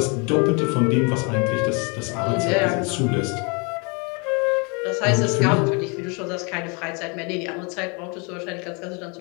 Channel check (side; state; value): right; quieter; 32.4 dB